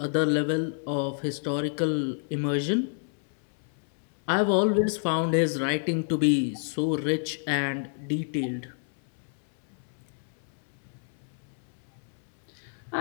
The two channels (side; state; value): right; silent; 59 dB below the other